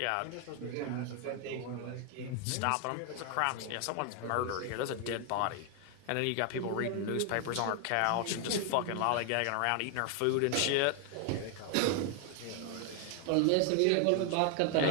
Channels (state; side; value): different; both; correlation 0.01